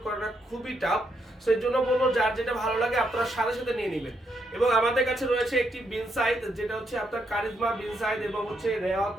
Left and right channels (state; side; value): normal; both; correlation 0.78